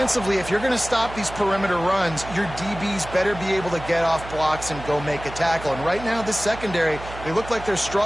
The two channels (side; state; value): right; noise; hum, 13 dB below the sound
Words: if you're going to stop these perimeter runs, your DBs better be able to get off blocks and go make a tackle. And right now, this secondary, they look like they're